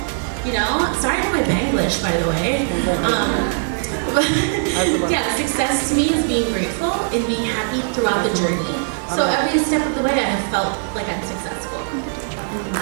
Sorry for my Banglish, by the way. Yeah, success to me is being grateful and being happy throughout the journey. So every step of the way, I have felt like I'm successful.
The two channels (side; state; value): left; silent; digital silence